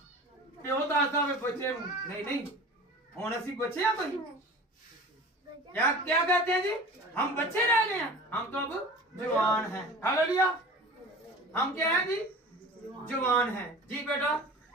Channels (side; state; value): both; normal; correlation 0.39